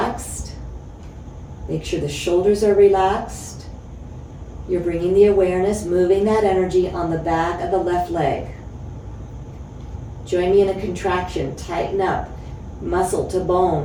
Make sure the shoulders are relaxed. You're bringing the awareness, moving that energy on the back of the left leg. Join me in a contraction. Tighten up. Muscle to bone.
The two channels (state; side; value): identical; both; correlation 1.00